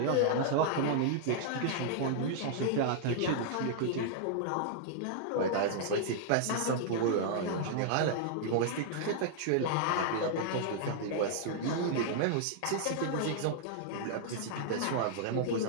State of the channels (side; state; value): both; different; correlation -0.01